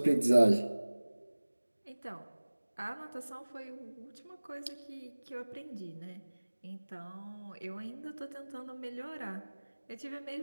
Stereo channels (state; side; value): inverted; both; correlation -1.00